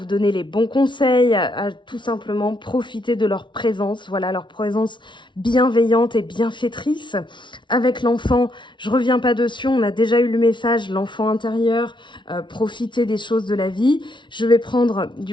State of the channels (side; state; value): right; late; 0.24 ms